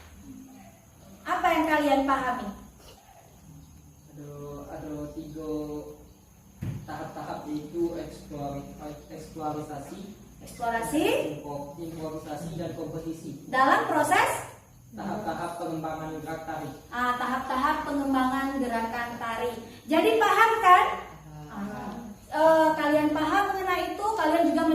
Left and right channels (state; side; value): identical; both; correlation 1.00